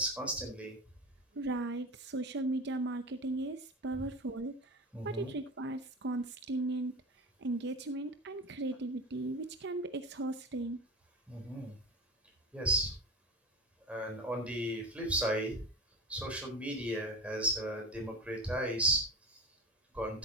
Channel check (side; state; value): both; normal; correlation 0.29